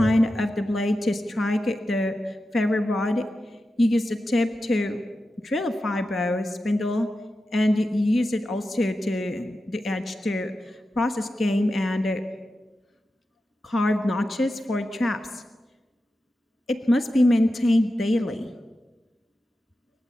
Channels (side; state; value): both; normal; correlation 0.91